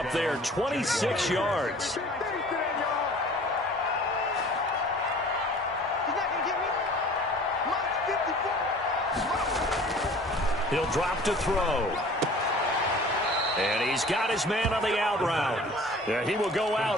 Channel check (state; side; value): normal; both; correlation 0.46